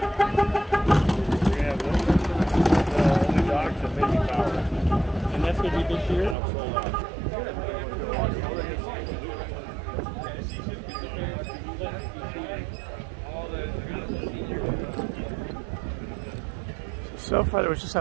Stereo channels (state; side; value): drops out; left; at 6.4 s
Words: And that's going to be this year? So far there was just